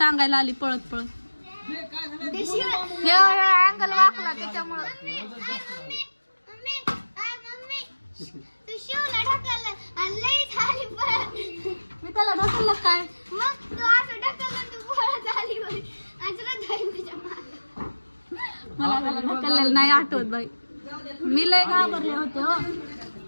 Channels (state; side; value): inverted; both; correlation -1.00